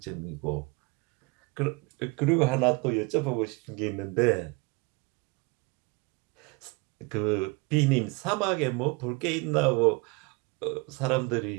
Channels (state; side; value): quieter; left; 27.4 dB